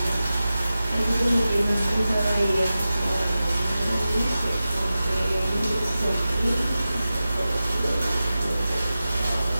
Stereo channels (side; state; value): both; inverted; correlation -0.93